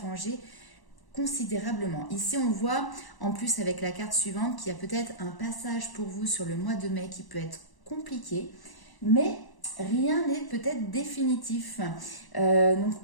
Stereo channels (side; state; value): right; late; 1.0 ms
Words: considérablement. Ici, on voit, en plus avec la carte suivante, qu'il y a peut-être un passage pour vous sur le mois de mai qui peut être compliqué, mais rien n'est peut-être définitif. Donc